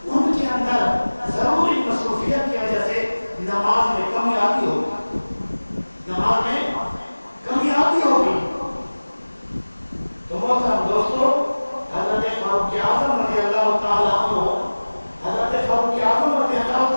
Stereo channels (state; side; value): inverted; both; correlation -1.00